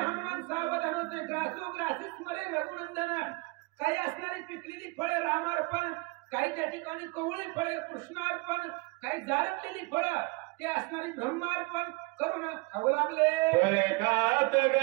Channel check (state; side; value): quieter; left; 26.8 dB